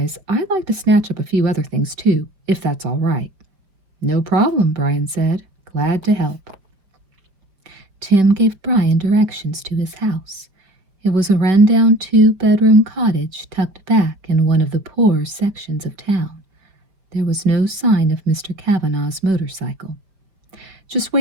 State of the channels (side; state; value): left; late; 5.0 ms